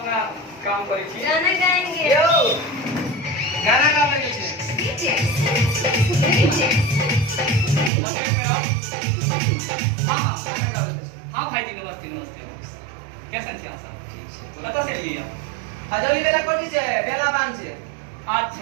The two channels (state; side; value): drops out; left; at 7.9 s